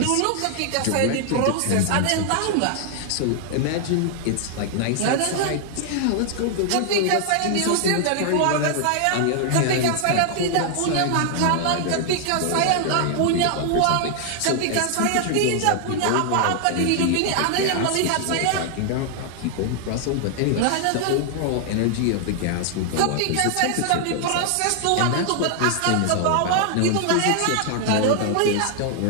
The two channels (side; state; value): both; different; correlation 0.00